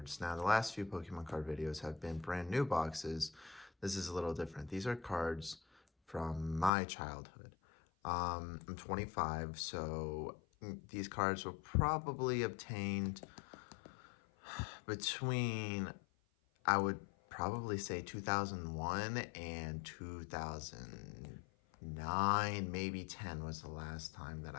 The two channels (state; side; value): drops out; right; at 6.7 s